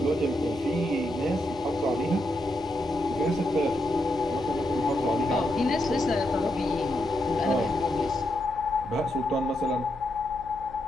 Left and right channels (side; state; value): left; noise; hum, 20 dB below the sound